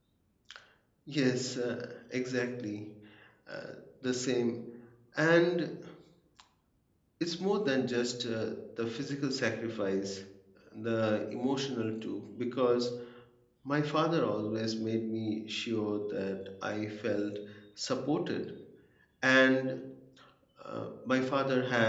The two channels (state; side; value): identical; both; correlation 1.00